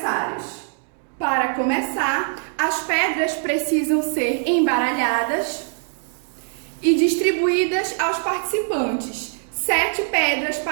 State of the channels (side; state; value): left; silent; 59 dB below the other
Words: Para começar, as pedras precisam ser embaralhadas e distribuídas aos participantes, 7 pedras